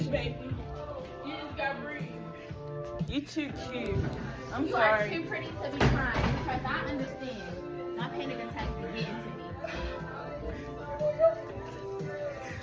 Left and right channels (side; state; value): both; identical; correlation 1.00